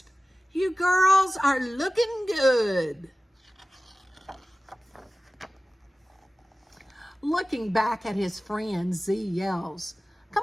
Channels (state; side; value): normal; both; correlation 0.96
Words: You girls are looking good. Looking back at his friend, Z yells,